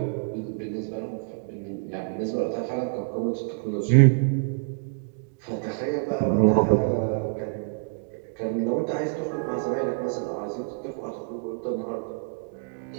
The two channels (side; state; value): left; silent; digital silence